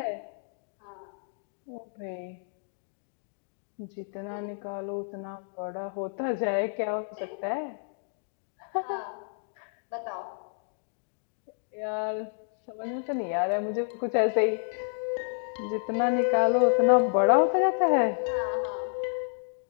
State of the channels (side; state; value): right; silent; digital silence